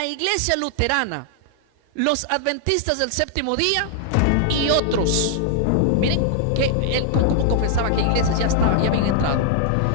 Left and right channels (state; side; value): different; both; correlation -0.01